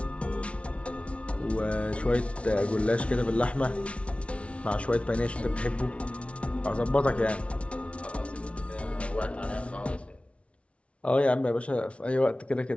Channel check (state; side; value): late; right; 0.061 ms